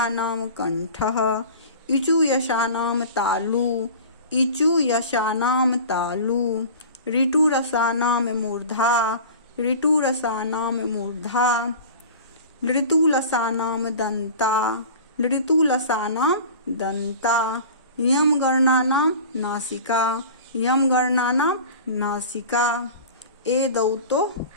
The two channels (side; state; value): both; inverted; correlation -0.38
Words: नाम कंठः। इचु यशानाम तालु, इचु यशानाम तालु। ऋटुरसानाम मूर्धा, ऋटुरसानाम मूर्धा। लृतुलसानाम दंता, लृतुलसानाम दंता। यम गणनानाम नासिका, यम गणनानाम नासिका। एदौतो